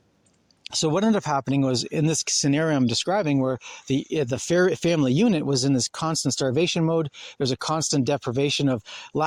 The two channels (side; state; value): both; identical; correlation 1.00